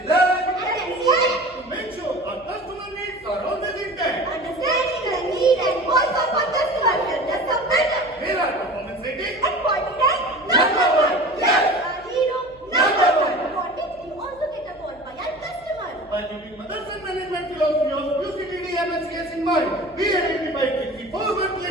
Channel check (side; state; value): right; noise; hum, 27 dB below the sound